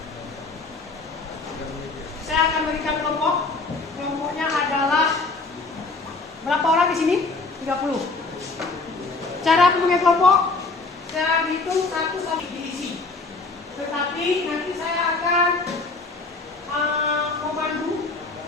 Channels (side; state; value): right; quieter; 3.7 dB